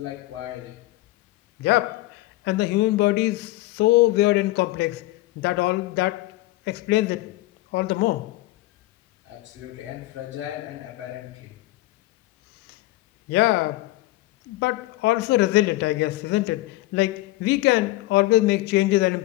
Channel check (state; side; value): quieter; right; 18.2 dB